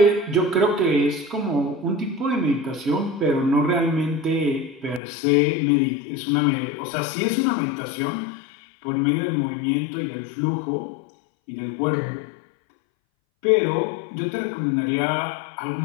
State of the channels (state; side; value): drops out; right; at 5.0 s